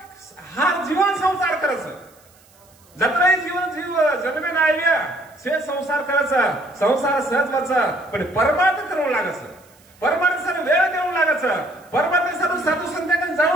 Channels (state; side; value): noise; right; hiss, 29 dB below the sound